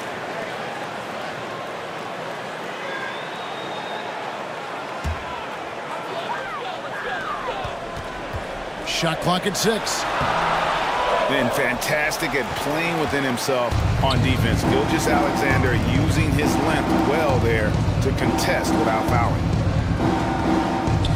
Shot clock at 6. Been fantastic at playing within himself on defense. Gilgeous-Alexander using his length well there to contest without fouling.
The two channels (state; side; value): identical; both; correlation 1.00